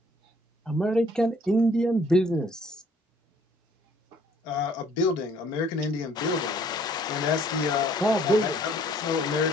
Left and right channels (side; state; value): both; normal; correlation 0.60